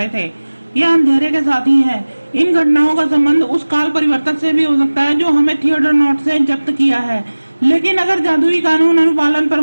थे। यह अंधेरे के साथी है। इन घटनाओं का संबंध उस काल परिवर्तक से भी हो सकता है जो हमें थिएटर नॉट से जब्त किया है। लेकिन अगर जादुई कानून अनुपालन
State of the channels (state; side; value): inverted; both; correlation -1.00